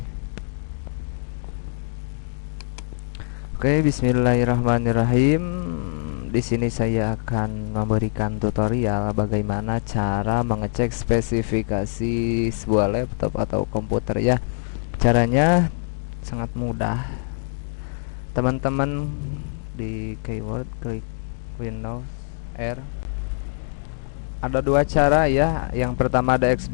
bismillahirrahmanirrahim. Di sini saya akan memberikan tutorial bagaimana cara mengecek spesifikasi sebuah laptop atau komputer ya. Caranya sangat mudah. Teman-teman di keyword klik Windows R. Ada dua cara ya. Yang pertama ada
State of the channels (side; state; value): right; silent; digital silence